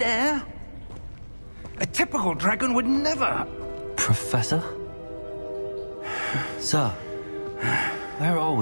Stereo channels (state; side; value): inverted; both; correlation -1.00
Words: A typical dragon would never... Professor? Sir, where are